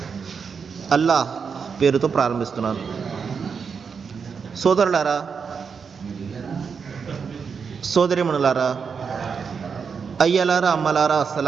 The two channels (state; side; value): quieter; left; 6.0 dB